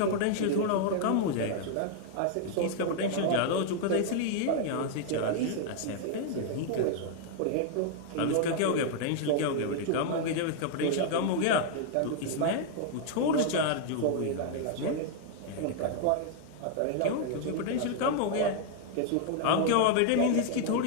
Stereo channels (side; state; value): both; different; correlation 0.00